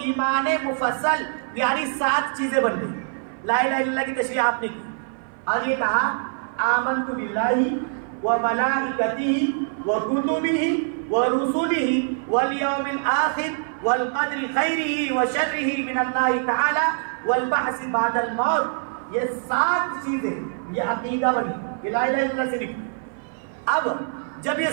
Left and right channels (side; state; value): left; silent; 57 dB below the other